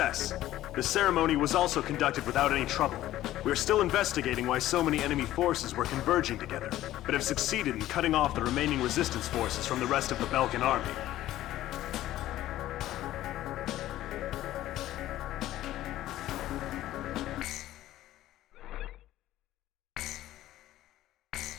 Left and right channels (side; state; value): right; quieter; 14.3 dB